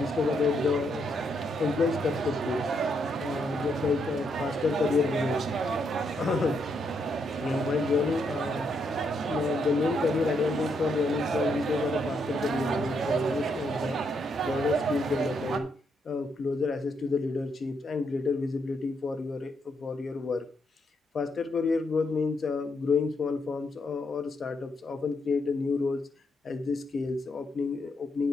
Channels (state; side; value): normal; both; correlation 0.77